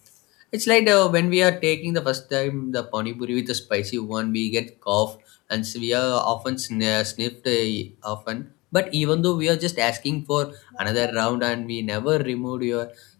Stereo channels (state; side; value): quieter; right; 23.4 dB